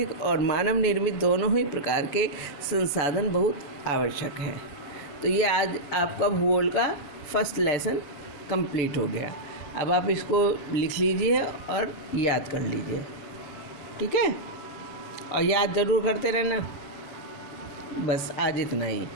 और मानव निर्मित दोनों ही प्रकार के संसाधन बहुत आवश्यक हैं। तो ये आज आपका भूगोल का फर्स्ट लेसन कंप्लीट हो गया। अब आप इसको लिख लीजिए और याद कर लीजिए, ठीक है? और याद ज़रूर करते रहना। बस आज इतना ही।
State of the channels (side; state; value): right; late; 6.8 ms